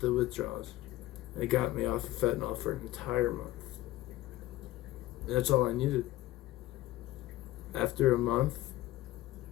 withdrawals. And it got me off of fentanyl for an entire month. And that's all I needed. After a month,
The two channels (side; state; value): right; quieter; 16.2 dB